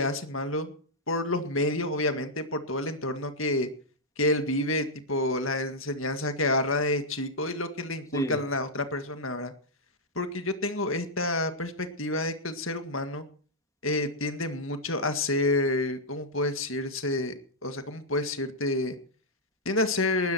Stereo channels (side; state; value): both; normal; correlation -0.06